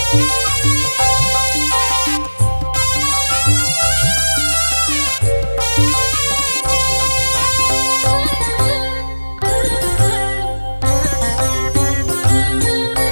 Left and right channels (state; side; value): inverted; both; correlation -1.00